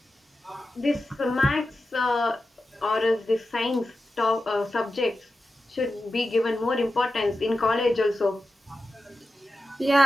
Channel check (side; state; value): both; normal; correlation 0.92